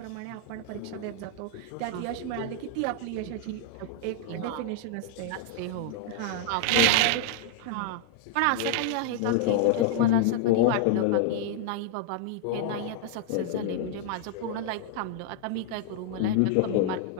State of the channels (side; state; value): both; different; correlation 0.00